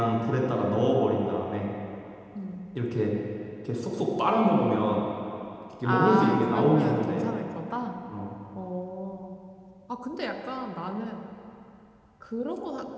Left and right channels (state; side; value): identical; both; correlation 1.00